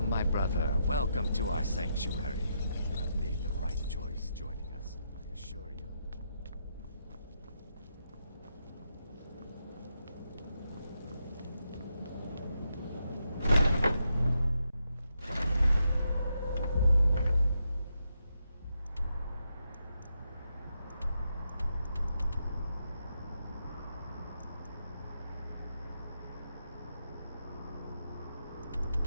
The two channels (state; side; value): inverted; both; correlation -0.82